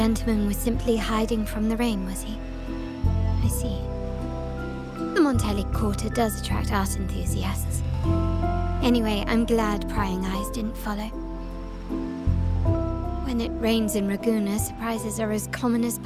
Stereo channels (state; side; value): identical; both; correlation 1.00